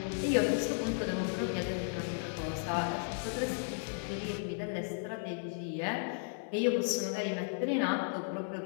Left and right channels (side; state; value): right; silent; 55 dB below the other